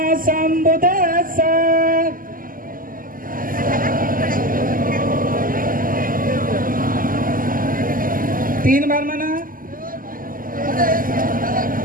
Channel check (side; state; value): left; late; 0.41 ms